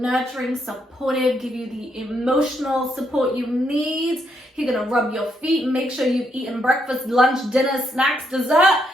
supportive, give you the emotional support you need. He's gonna rub your feet, make sure you've eaten breakfast, lunch, dinner, snacks, dessert.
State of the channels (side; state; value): both; normal; correlation 0.77